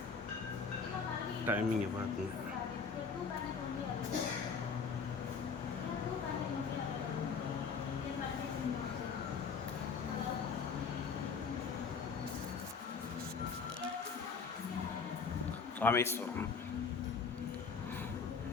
டைமிங்கை பார்த்துங்க. ராமேஸ்வரம்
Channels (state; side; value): quieter; right; 5.5 dB